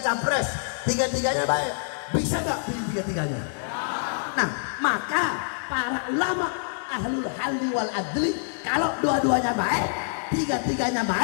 capres, tiga-tiganya baik, bisa nggak pilih tiga-tiganya? Ya. Nah, maka para ulama ahlul halli wal adli, kalau dua-duanya baik, tiga-tiganya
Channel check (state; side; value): silent; right; digital silence